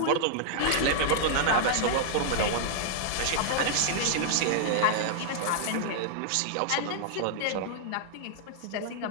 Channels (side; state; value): both; different; correlation -0.01